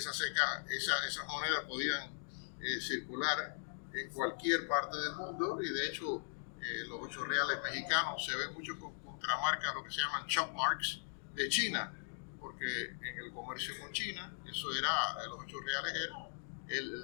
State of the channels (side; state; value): right; silent; digital silence